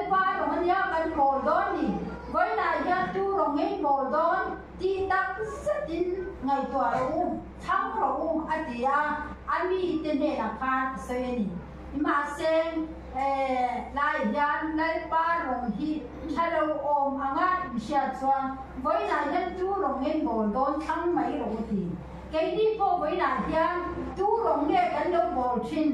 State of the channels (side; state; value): both; identical; correlation 1.00